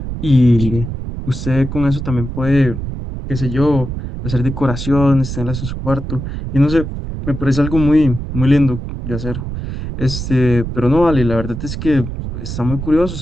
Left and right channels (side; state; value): right; noise; rumble, 6 dB below the sound